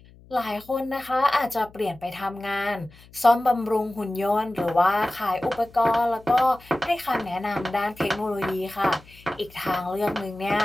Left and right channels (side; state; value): left; noise; hum, 24 dB below the sound